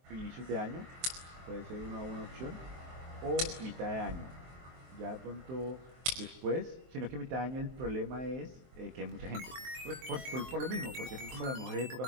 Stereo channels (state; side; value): late; left; 23 ms